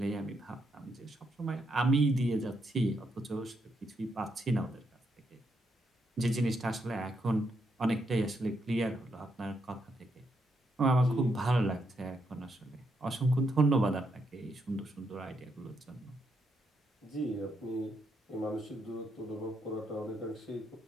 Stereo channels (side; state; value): both; normal; correlation 0.78